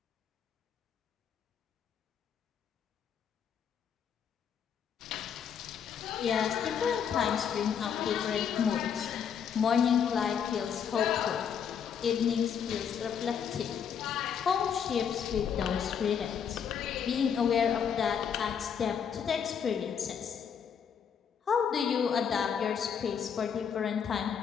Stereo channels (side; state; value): right; quieter; 7.6 dB